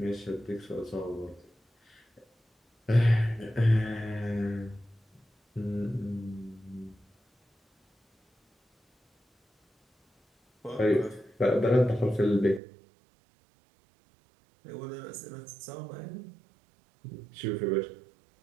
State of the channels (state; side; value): drops out; left; at 12.6 s